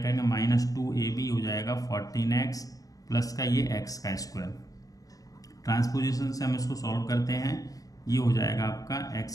माइनस 2ab हो जाएगा 14x प्लस का ये x का स्क्वायर। ट्रांसपोजिशन से हम इसको सॉल्व करते हैं, ये हो जाएगा आपका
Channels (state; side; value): late; right; 0.17 ms